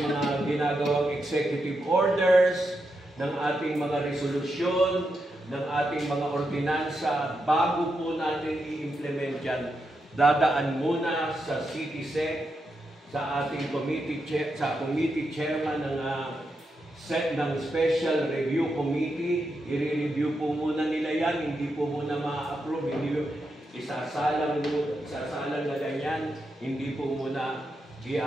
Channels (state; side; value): normal; both; correlation 0.85